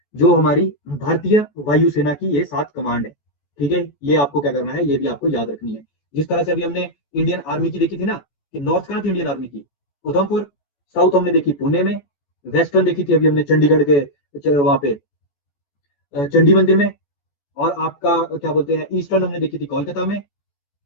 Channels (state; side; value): late; right; 14 ms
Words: जो हमारी भारतीय वायुसेना की ये 7 कमांड है। ठीक है, ये आपको क्या करना है, ये भी आपको याद रखनी है। जिस तरह से अभी हमने इंडियन आर्मी की देखी थी ना, कि नॉर्थ कहाँ थी इंडियन आर्मी की? उधमपुर। साउथ हमने देखी पुणे में। वेस्टर्न देखी थी अभी हमने चंडीगढ़ के वहां पे चंडी मंदिर में। और आपका क्या बोलते हैं, ईस्टर्न हमने देखी थी कोलकाता में।